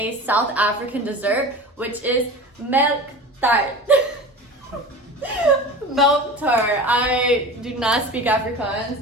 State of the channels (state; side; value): normal; both; correlation 0.33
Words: South African dessert, which is melktert. Melktert. I do not speak